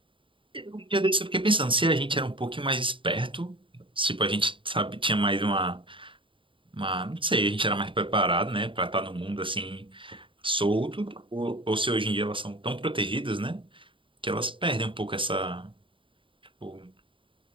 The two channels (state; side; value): late; left; 0.25 ms